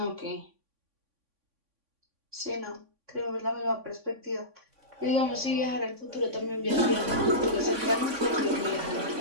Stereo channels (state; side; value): late; left; 3.5 ms